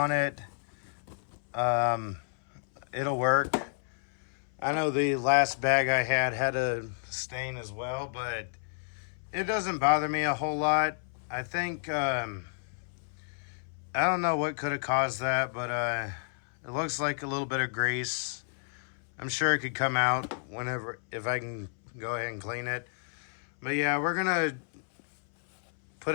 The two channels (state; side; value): silent; right; 57 dB below the other